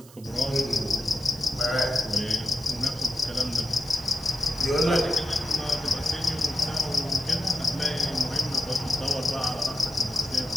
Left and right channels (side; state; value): right; noise; hiss, 22 dB below the sound